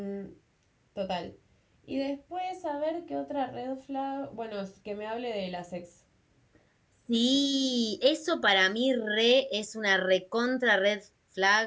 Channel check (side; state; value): both; identical; correlation 1.00